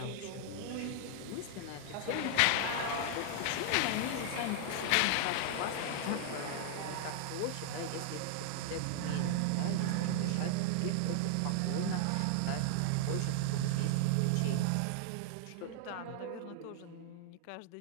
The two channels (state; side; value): different; both; correlation 0.00